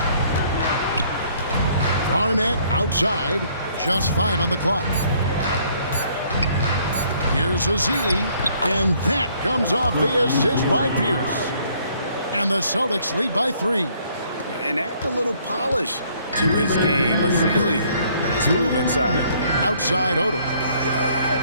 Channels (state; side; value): inverted; both; correlation -0.63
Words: Garnett outside, just 5 on the clock. Here's Azili, and that comes off the assist by Pierce. And the Celtics lead by 3. And add a little polish to his game. Azili, nice move inside. Outside Odom.